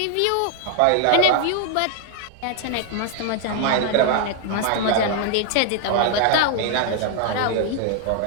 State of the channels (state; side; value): different; both; correlation 0.00